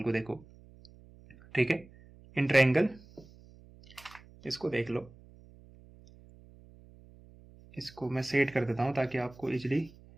को देखो, ठीक है, इन ट्रायंगल इसको देख लो, इसको मैं सेट कर देता हूं ताकि आपको इजीली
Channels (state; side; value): noise; right; hum, 23 dB below the sound